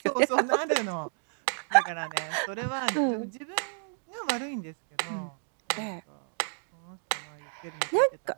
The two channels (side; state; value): left; silent; digital silence